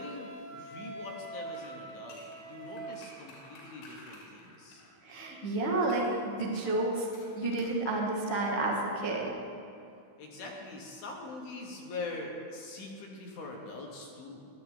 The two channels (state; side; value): late; right; 15 ms